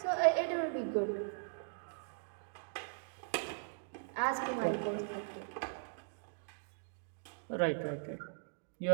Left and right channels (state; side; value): silent; left; digital silence